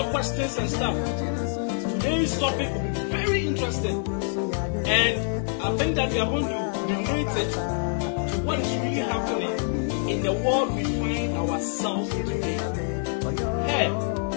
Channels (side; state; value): right; silent; 61 dB below the other